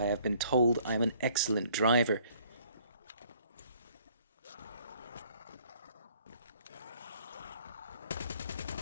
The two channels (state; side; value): inverted; both; correlation -0.60